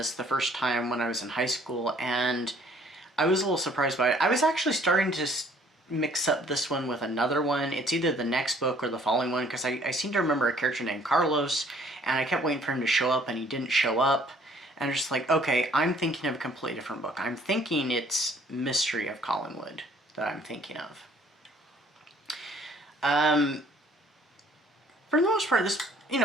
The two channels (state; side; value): normal; both; correlation 0.58